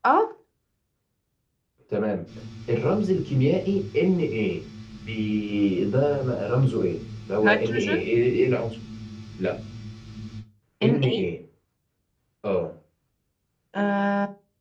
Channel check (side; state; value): both; identical; correlation 1.00